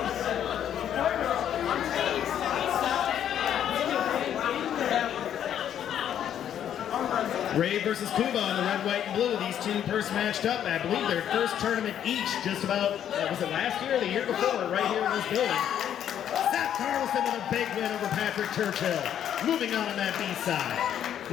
Rave versus Kuba on the red, white, and blue. These two first matched up. I believe their first tournament each just about, was it last year or the year before, right here in this building. Seth Carlson with a big win over Patrick Churchill. Moving on that B-side.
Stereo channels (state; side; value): quieter; right; 9.9 dB